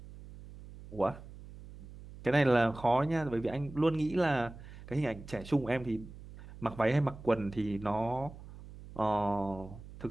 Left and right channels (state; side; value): noise; right; hum, 16 dB below the sound